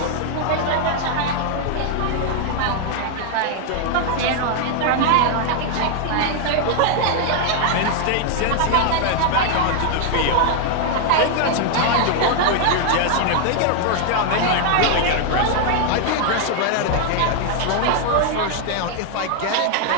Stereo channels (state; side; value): different; both; correlation 0.00